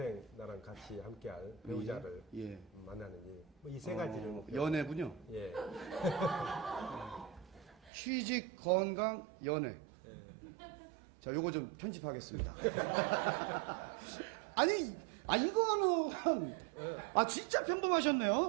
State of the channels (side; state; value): left; drops out; at 7.9 s